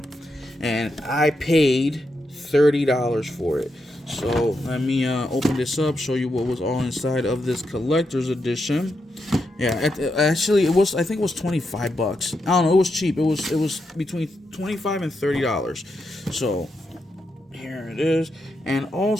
and I paid $30 for it. So let me open this up, show you what was all inside of this collector's edition. Yeah, actually it was, I think it was $25. I don't know, it was cheap. It was between $25 and $30. So here it is. And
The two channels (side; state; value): both; normal; correlation 0.84